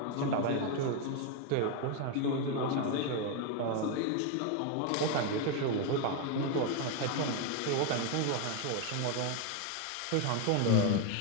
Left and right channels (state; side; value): different; both; correlation 0.01